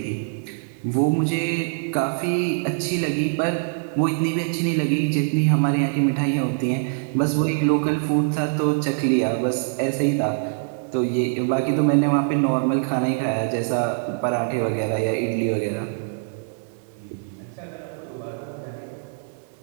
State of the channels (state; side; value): silent; left; digital silence